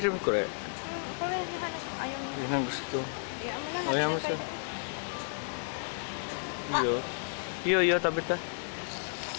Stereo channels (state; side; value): silent; right; digital silence